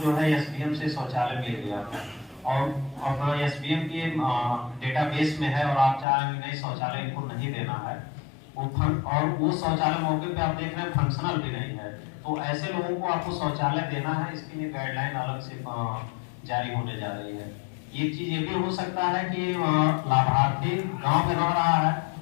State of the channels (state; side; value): drops out; right; at 6.1 s